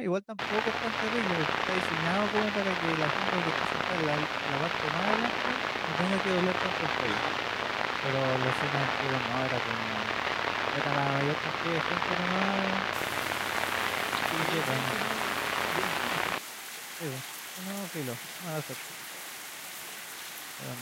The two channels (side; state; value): both; identical; correlation 1.00